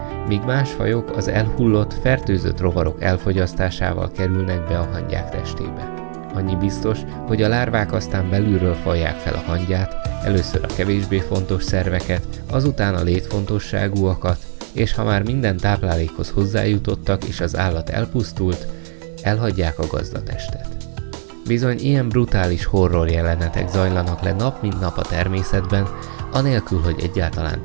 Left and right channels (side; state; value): left; silent; digital silence